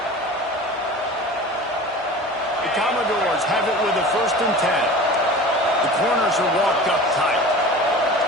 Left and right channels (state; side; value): normal; both; correlation 0.37